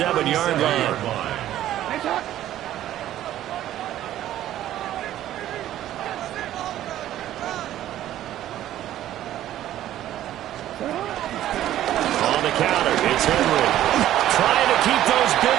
line. On the counter, it's Henry. Trying to keep those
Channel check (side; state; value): left; quieter; 12.8 dB